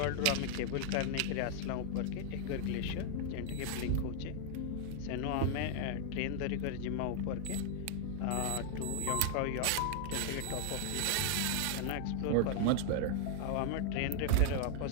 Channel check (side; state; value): both; different; correlation 0.00